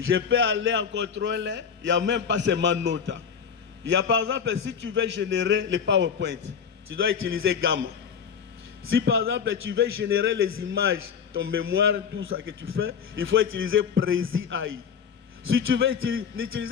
peux aller en contrôle, il n'y a même pas seulement Nota. Il y a par exemple, si tu veux générer les PowerPoint, tu dois utiliser Gamma. Si par exemple, tu veux générer les images, ton mémoire, tout ça que tu fais, il faut utiliser Prezi AI. Si tu veux,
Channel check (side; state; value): right; quieter; 7.0 dB